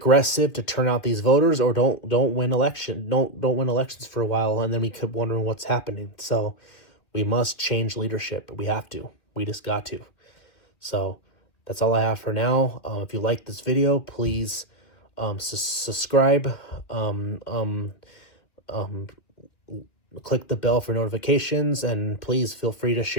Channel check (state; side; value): late; right; 2.4 ms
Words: to turn out these voters, or don't win win elections for a while, and then we keep wondering what's happening. So we must change leadership. We have to. We just got to. So that's all I have for now. If you like this video, please subscribe. Click the bell for notifications, and please feel free to